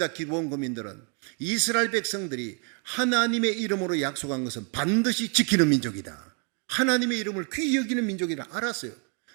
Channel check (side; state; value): left; quieter; 38.1 dB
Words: 기본거민들은 이스라엘 백성들이 하나님의 이름으로 약속한 것은 반드시 지키는 민족이다. 하나님의 이름을 귀히 여기는 민족이라 알았어요.